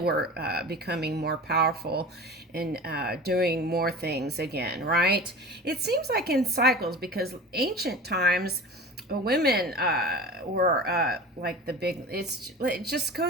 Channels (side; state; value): both; normal; correlation 0.35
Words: were becoming more powerful and doing more things again, right? It seems like in cycles, because ancient times, women were like the big, it just